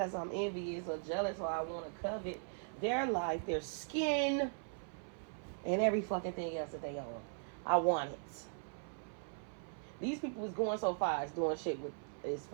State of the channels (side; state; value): left; silent; 52 dB below the other